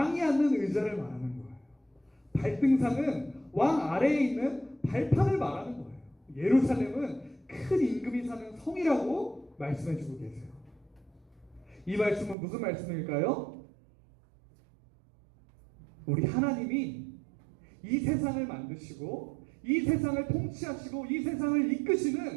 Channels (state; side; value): drops out; left; at 12.4 s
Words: 앉는 의자를 말하는 거예요. 발등상은 왕 아래에 있는 발판을 말하는 거예요. 예루살렘은 큰 임금이 사는 성이라고 말씀해 주고 계세요. 이 말씀은 무슨 말씀일까요? 우리 하나님이 이 세상을 만드시고 이 세상을 통치하시고 이 세상을